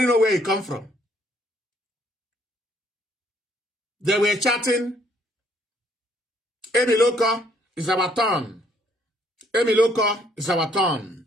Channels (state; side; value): normal; both; correlation 0.66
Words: knows where he come from. They were chatting, Emiloko is our turn. Emiloko is our turn.